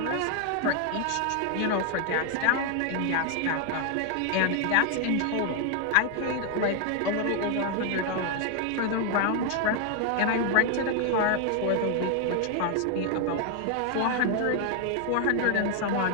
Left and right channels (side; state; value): both; different; correlation 0.00